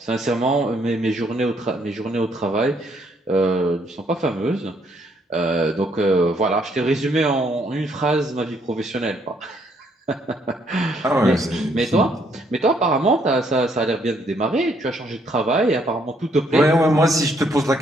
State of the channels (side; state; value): both; normal; correlation 0.69